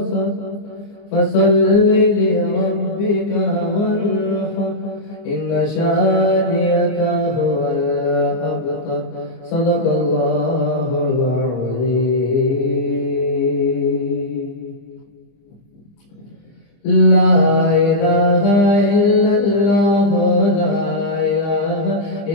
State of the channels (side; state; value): right; late; 25 ms